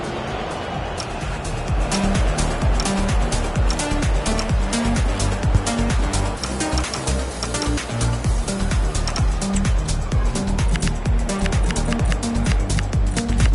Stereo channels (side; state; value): both; identical; correlation 1.00